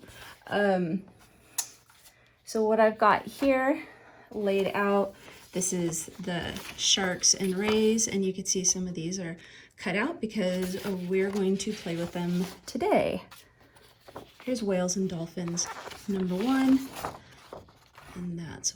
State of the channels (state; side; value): identical; both; correlation 1.00